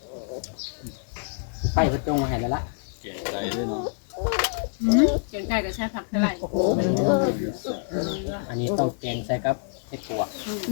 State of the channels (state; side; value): silent; right; digital silence